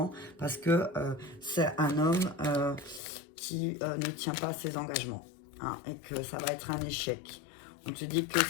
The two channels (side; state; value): right; drops out; at 3.0 s